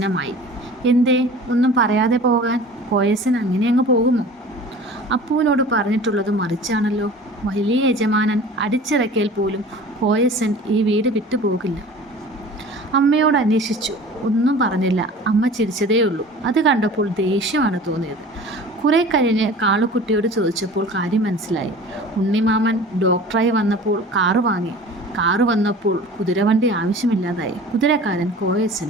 എന്തേ ഒന്നും പറയാതെ പോകാൻ? കോയസൻ അങ്ങനെ അങ്ങ് പോകുമോ? അപ്പുവിനോട് പറഞ്ഞിട്ടുള്ളത് മറിച്ചാണല്ലോ. വലിയ യജമാനൻ അടിച്ചിറക്കിയാൽ പോലും കോയസൻ ഈ വീട് വിട്ടു പോകില്ല. അമ്മയോട് അന്വേഷിച്ചു, ഒന്നും പറഞ്ഞില്ല. അമ്മ ചിരിച്ചതേയുള്ളൂ. അത് കണ്ടപ്പോൾ ദേഷ്യമാണ് തോന്നിയത്. കുറെ കഴിഞ്ഞ് കാളുക്കുട്ടിയോട് ചോദിച്ചപ്പോൾ കാര്യം മനസ്സിലായി. ഉണ്ണിമാമൻ ഡോക്ടറായി വന്നപ്പോൾ കാറ് വാങ്ങി. കാറ് വന്നപ്പോൾ കുതിരവണ്ടി ആവശ്യമില്ലാതായി. കുതിരക്കാരൻ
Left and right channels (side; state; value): both; normal; correlation 0.42